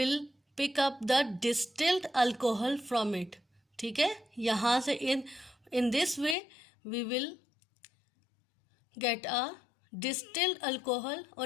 pick up the distilled alcohol from it. ठीक है, यहाँ से in this way we will get a distilled alcohol, or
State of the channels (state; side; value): drops out; right; at 6.4 s